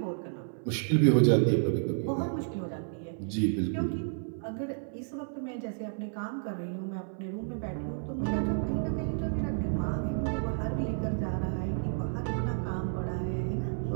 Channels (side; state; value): left; silent; 57 dB below the other